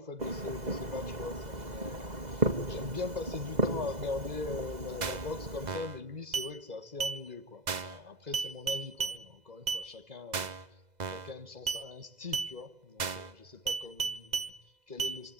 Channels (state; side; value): late; left; 2.0 ms